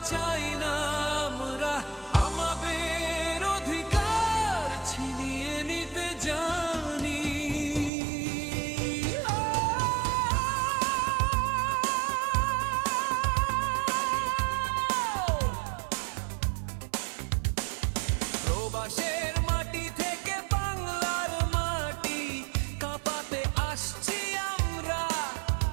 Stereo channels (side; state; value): left; drops out; at 7.9 s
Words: চাই না, আমরা আমাদের অধিকার ছিনিয়ে নিতে জানি। প্রবাসের মাটি থেকে বাংলার মাটি কাঁপাতে আসছি আমরা,